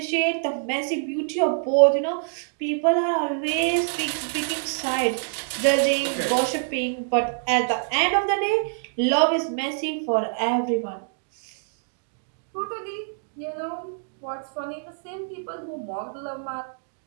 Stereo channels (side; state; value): left; silent; digital silence